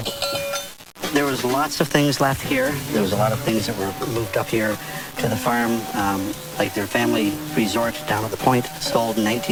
There was lots of things left here. There was a lot of things that were moved up here to the farm, like their family resort down at the Point, sold in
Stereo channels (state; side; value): identical; both; correlation 1.00